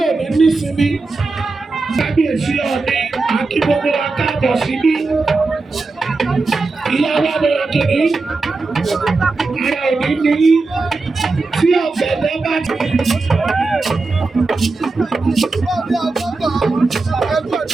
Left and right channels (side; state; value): left; quieter; 3.7 dB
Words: ní nísinmi kábíyèsí ọ̀ní àti gbogbo wa káàbọ̀ síbí ìyá wa bẹ̀rẹ̀ kìíní ara òní ní tí ọ̀gbẹ̀dẹ̀ bá ti.